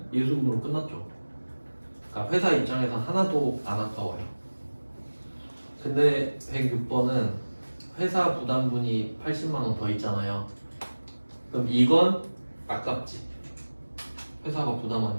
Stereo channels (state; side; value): inverted; both; correlation -1.00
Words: 예수금으로 끝났죠. 그러니까 회사 입장에서 하나도 안 아까워요. 근데 106번은 회사 부담분이 80만 원 더 있잖아요. 그럼 이건 아깝지. 회사가